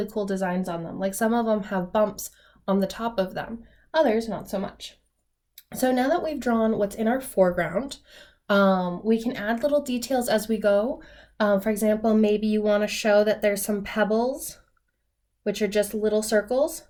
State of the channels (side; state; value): both; identical; correlation 1.00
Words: cool designs on them. Like some of them have bumps on the top of them, others not so much. So now that we've drawn what's in our foreground, we can add little details as we go. For example, maybe you want to show that there's some pebbles, which are just little circles